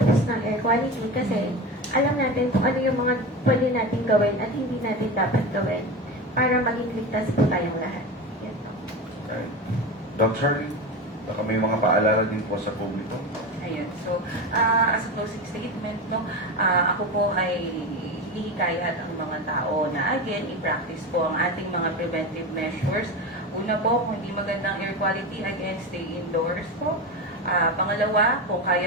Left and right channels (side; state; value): both; normal; correlation 0.24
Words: ng air quality kasi alam natin kung ano yung mga pwede natin gawin at hindi natin dapat gawin para maging ligtas po tayong lahat. Yan po. Doc Charlie, baka may mga paalala din po sa publiko. Ayun. So, as a closing statement, no, ako po ay hihikayat ang mga tao na again, i-practice po ang ating mga preventive measures. Una po, kung hindi magandang air quality, again, stay indoors po. Pangalawa, kung